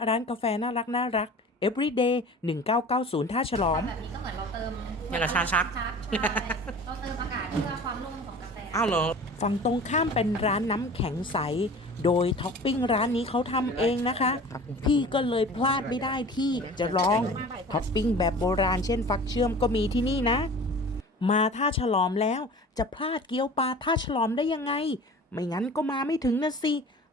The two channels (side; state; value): both; normal; correlation 0.41